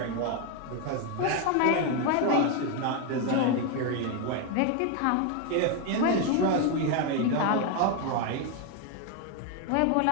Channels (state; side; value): different; both; correlation 0.01